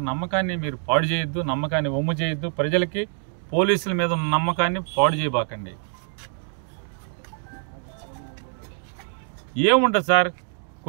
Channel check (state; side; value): silent; left; 57 dB below the other